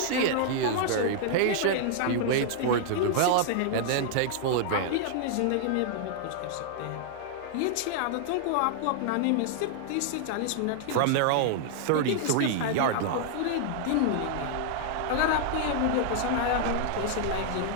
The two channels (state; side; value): different; both; correlation -0.01